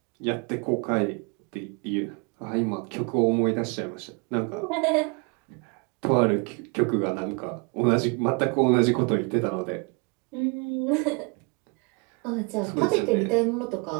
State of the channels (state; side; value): quieter; left; 32.8 dB